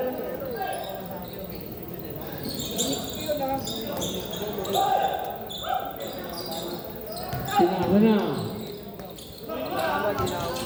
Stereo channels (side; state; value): both; identical; correlation 1.00